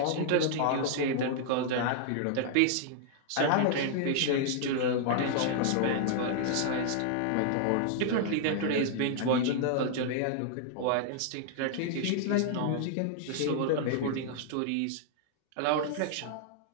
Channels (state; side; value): different; both; correlation -0.01